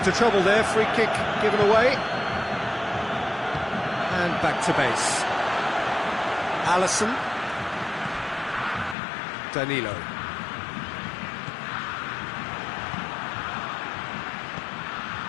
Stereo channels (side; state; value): right; drops out; at 9.0 s